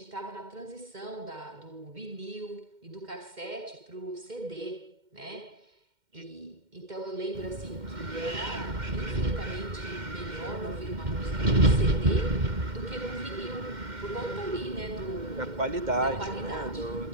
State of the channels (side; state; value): left; late; 2.1 ms